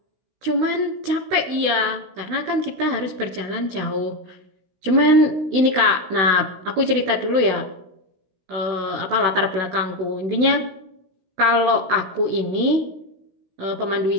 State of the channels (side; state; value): left; late; 16 ms